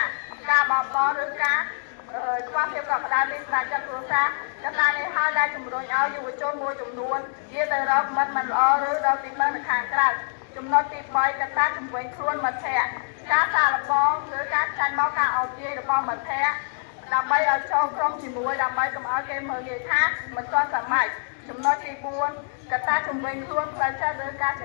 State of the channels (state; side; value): silent; right; digital silence